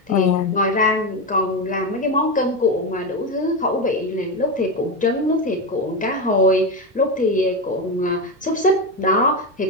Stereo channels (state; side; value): normal; both; correlation 0.13